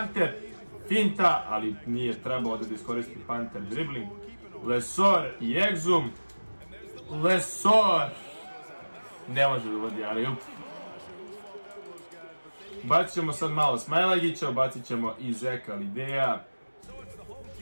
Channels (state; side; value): inverted; both; correlation -1.00